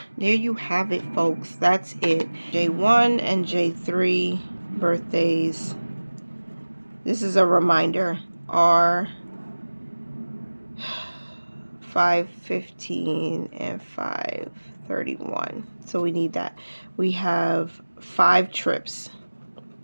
There you have it, folks. That's it. J1 and J3 birthdays. This is a reminder. Are 5/15 and 5/30. 31. So we need that. We have 5 trips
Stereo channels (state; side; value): inverted; both; correlation -1.00